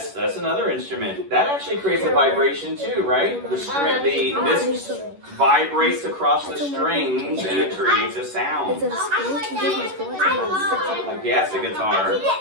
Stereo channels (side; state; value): left; late; 11 ms